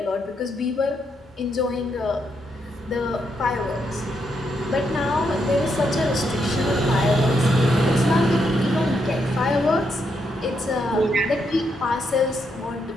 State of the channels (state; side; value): normal; both; correlation 0.79